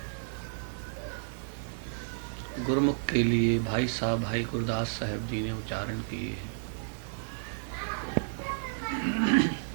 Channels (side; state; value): left; silent; digital silence